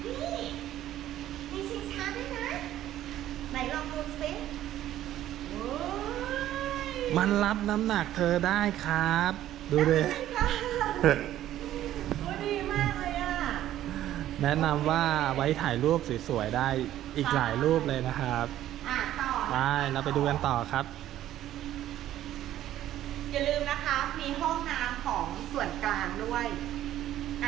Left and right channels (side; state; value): left; quieter; 12.8 dB